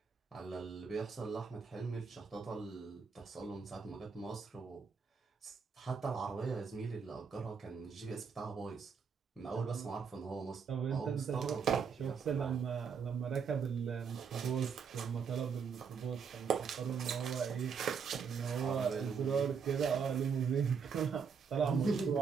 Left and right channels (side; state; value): left; quieter; 6.1 dB